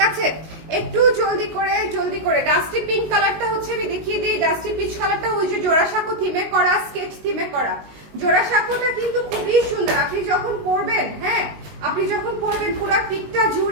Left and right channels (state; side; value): late; left; 19 ms